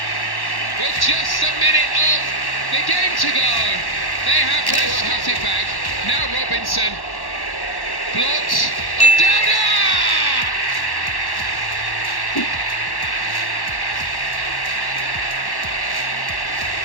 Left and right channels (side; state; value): right; late; 1.1 ms